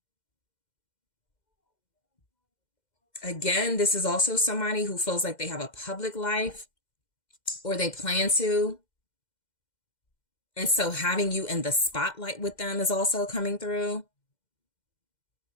Again, this is also somebody who feels like they have a public life or they plan to. And so having you in the spotlight with them is also coming through.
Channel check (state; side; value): late; right; 2.1 ms